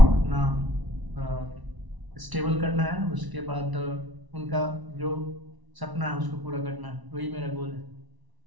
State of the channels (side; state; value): left; late; 1.0 ms